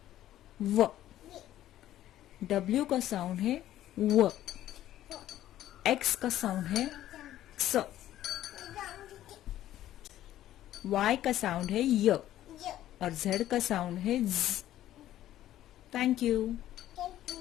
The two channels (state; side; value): quieter; right; 13.0 dB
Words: व। डब्ल्यू का साउंड है व। एक्स का साउंड है क्स। वाई का साउंड है य। और जेड का साउंड है ज। Thank you.